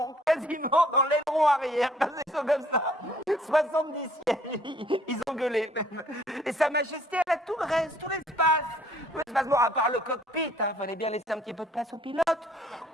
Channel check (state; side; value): normal; both; correlation 0.59